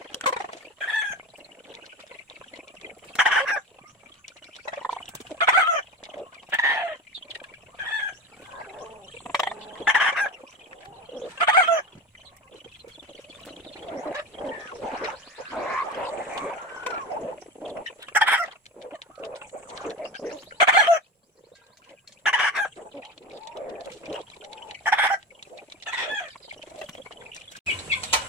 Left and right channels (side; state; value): both; normal; correlation 0.25